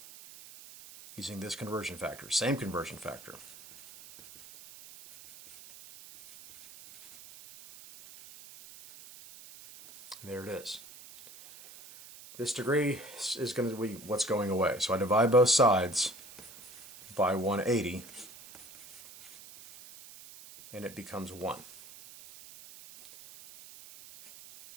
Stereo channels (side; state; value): right; noise; hiss, 18 dB below the sound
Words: using this conversion factor, same conversion factor. There it is. This degree is going to be what's going away. So I divide both sides by 180, and it becomes 1.